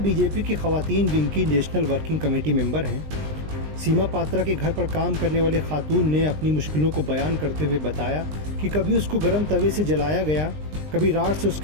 की खवातीन विंग की नेशनल वर्किंग कमेटी मेंबर हैं। सीमा पात्रा के घर पर काम करने वाली खातून ने अपनी मुश्किलों को बयान करते हुए बताया कि कभी उसको गर्म तवे से जलाया गया, कभी राड से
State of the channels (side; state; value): left; late; 20 ms